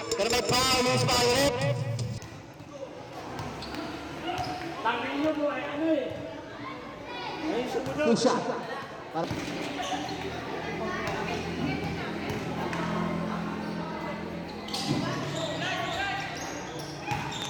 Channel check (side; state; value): both; identical; correlation 1.00